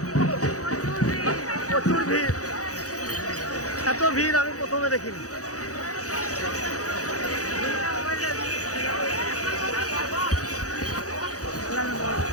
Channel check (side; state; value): right; late; 0.66 ms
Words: প্রচুর ভিড়। এত ভিড় আমি প্রথমে দেখিনি।